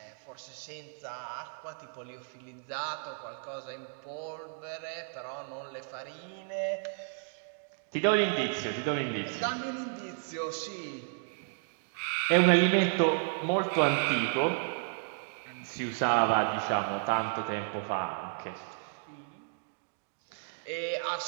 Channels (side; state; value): left; silent; digital silence